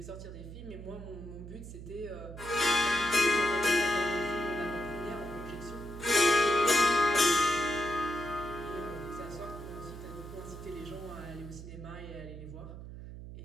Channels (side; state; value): right; noise; hum, 12 dB below the sound